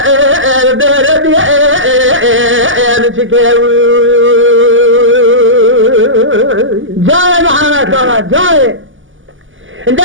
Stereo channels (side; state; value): left; late; 0.57 ms